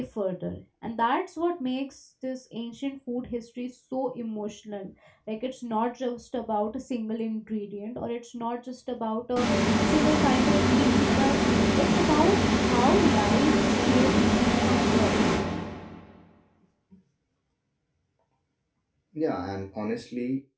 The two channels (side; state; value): both; identical; correlation 1.00